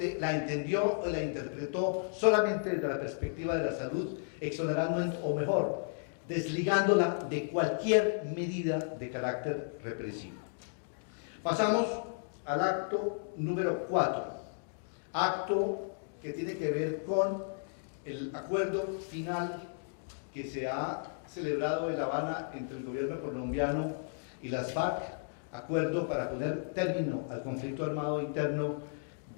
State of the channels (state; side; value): silent; right; digital silence